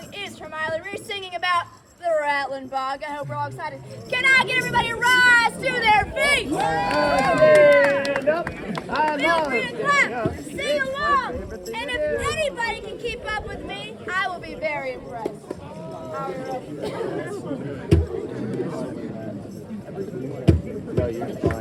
is from Miley Reese singing about the Rattlin Bog. I hope we're all excited. Can I get everybody to rise to their feet? Stand up. Feel free to clap, sing along, and if anybody can keep up with me, I will be very impressed. Are we ready? No, you're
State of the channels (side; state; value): both; identical; correlation 1.00